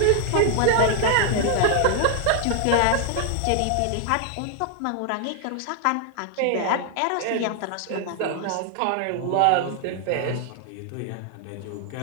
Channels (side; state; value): both; different; correlation 0.00